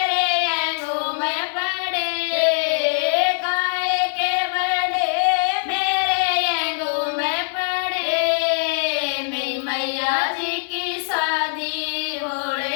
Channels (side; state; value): right; silent; digital silence